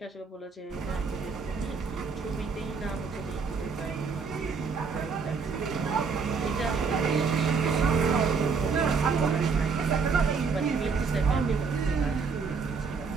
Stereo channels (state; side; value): quieter; left; 5.1 dB